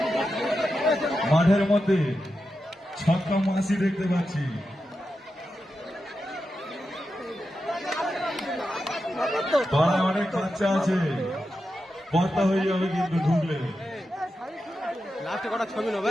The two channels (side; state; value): both; normal; correlation 0.89